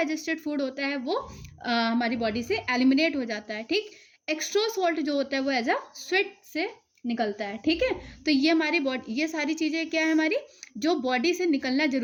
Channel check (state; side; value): identical; both; correlation 1.00